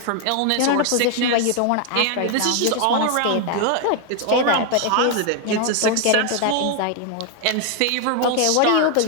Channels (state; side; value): different; both; correlation 0.00